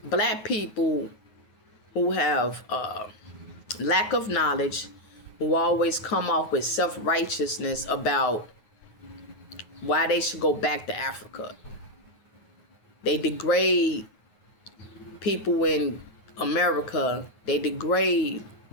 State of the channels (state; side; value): late; right; 9.5 ms